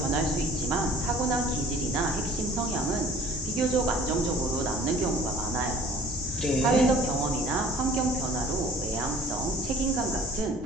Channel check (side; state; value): both; normal; correlation 0.51